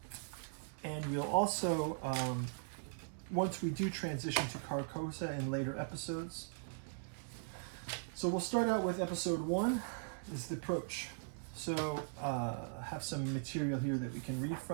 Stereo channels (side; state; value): left; silent; 51 dB below the other